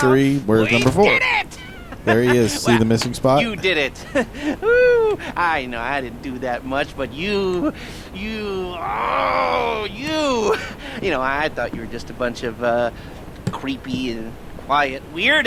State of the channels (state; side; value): identical; both; correlation 1.00